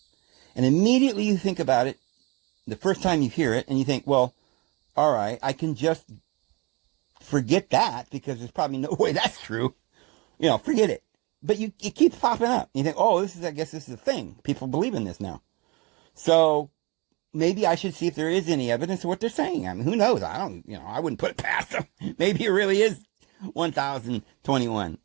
And immediately you think about it, the first time you hear it, and you think, well, all right, I can just forget that because there's probably no way that's true. Forget it. But it keeps popping up. You think, oh, I guess this is a thing. People believe in this now. So maybe I should see if there is any evidence of what they're saying. I mean, who knows? I wouldn't put it past them. Maybe it really is 1021,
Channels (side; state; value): left; quieter; 27.3 dB